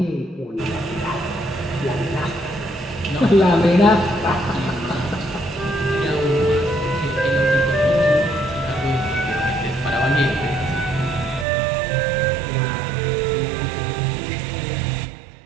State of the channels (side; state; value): left; drops out; at 11.5 s